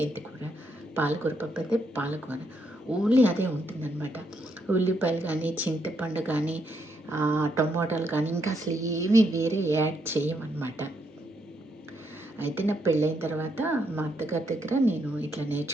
పాలకూర పప్పు అయితే పాలకూర, ఓన్లీ అదే ఉంటుందన్నమాట. ఉల్లిపాయలు కానీ, చింతపండు కానీ, టమోటాలు కానీ ఇంకా అసలు ఏమీ వేరే యాడ్ చేయమన్నమాట. అయితే నా పెళ్ళైన తర్వాత మా అత్తగారి దగ్గర నేను ఇట్లా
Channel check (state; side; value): normal; both; correlation 0.77